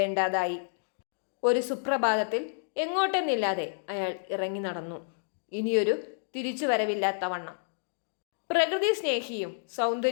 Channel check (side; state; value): right; silent; digital silence